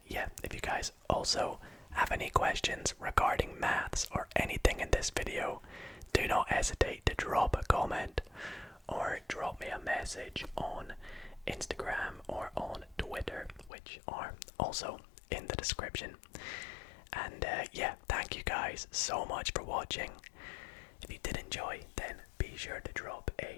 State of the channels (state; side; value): drops out; right; at 13.7 s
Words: yeah, if you guys also have any questions regarding maths or anything in this video, do not hesitate to drop a comment or drop me a message on Instagram or on Twitter, which are also in the description. And yeah, thank you guys so much for watching. If you did enjoy, then be sure to drop